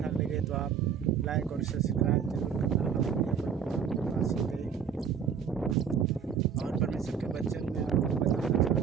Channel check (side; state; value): left; quieter; 7.2 dB